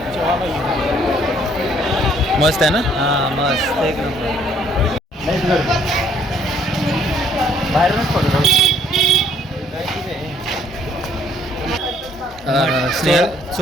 मस्त आहे ना? हां मस्त एक नंबर बाहेरूनच पडतो स्नेहल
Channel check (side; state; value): both; normal; correlation 0.63